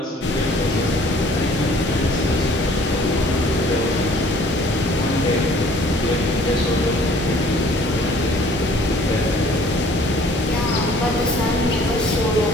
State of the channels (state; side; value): normal; both; correlation 0.55